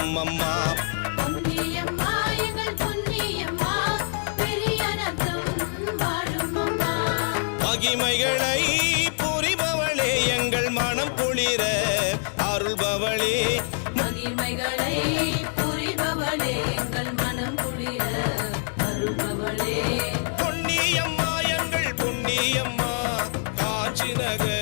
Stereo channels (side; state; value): right; silent; 60 dB below the other